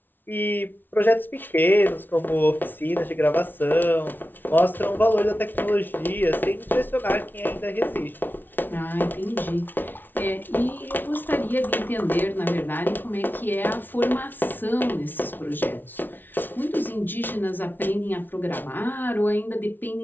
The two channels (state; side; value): late; right; 0.092 ms